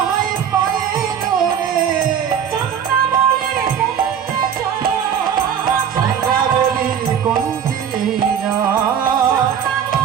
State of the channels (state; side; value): quieter; left; 8.3 dB